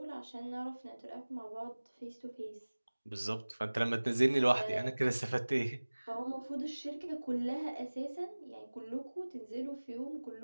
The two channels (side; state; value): both; inverted; correlation -1.00